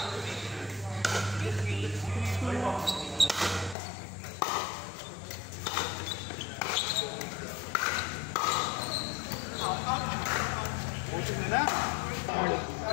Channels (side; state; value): right; drops out; at 3.8 s